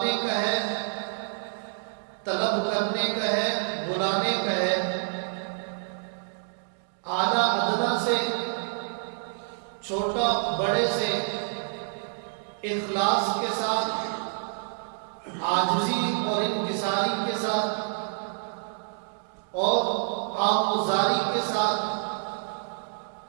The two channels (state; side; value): silent; left; digital silence